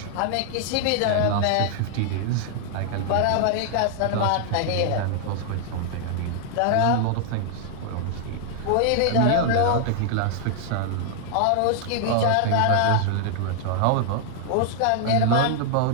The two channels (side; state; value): both; different; correlation 0.00